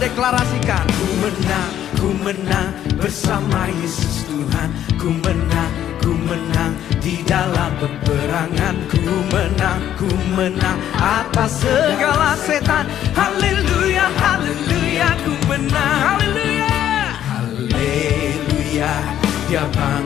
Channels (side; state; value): right; quieter; 11.1 dB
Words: deklarasikan. Ku menang bersama Yesus Tuhan. Ku menang di dalam peperangan. Ku menang atas segala setan. Haleluya, haleluya, ku menang. Haleluya, haleluya, dia